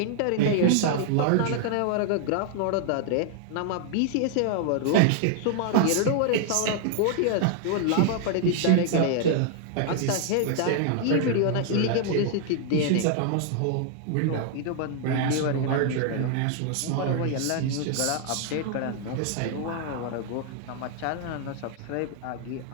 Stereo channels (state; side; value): different; both; correlation 0.00